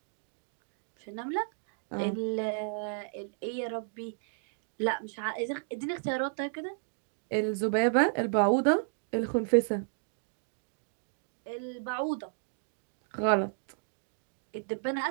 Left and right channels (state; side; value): silent; left; digital silence